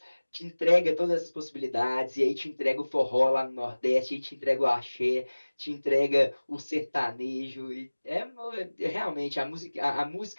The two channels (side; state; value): both; inverted; correlation -1.00